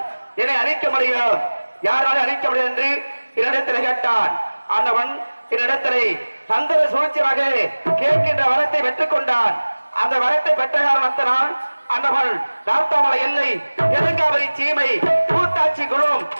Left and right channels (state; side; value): inverted; both; correlation -1.00